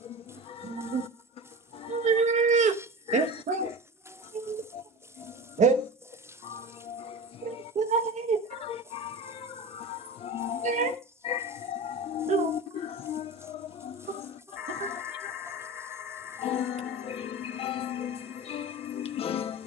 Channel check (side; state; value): both; normal; correlation 0.30